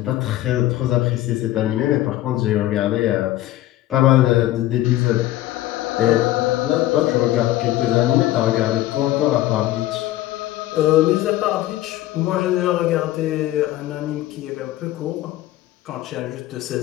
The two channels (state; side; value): quieter; right; 15.0 dB